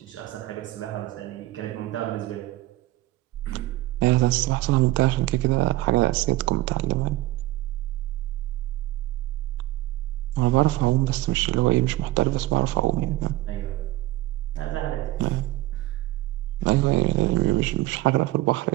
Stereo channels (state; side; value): quieter; left; 16.9 dB